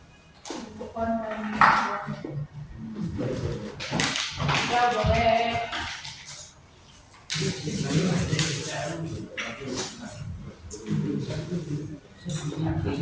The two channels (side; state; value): both; identical; correlation 1.00